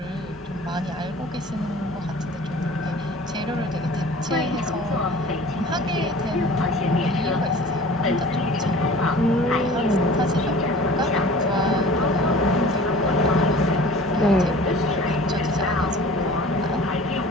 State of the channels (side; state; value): both; normal; correlation 0.44